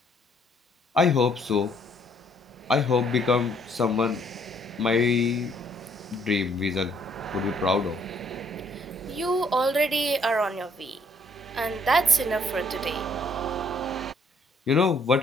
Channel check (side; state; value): both; normal; correlation 0.65